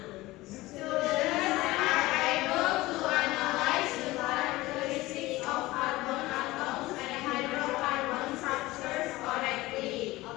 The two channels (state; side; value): quieter; right; 19.1 dB